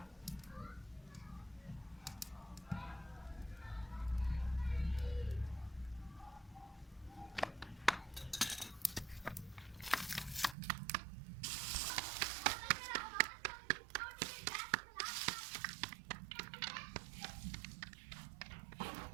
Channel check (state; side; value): drops out; left; at 10.6 s